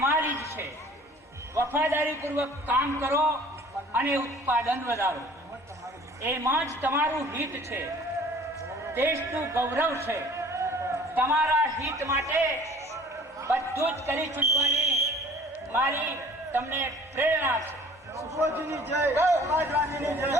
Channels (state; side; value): normal; both; correlation 0.49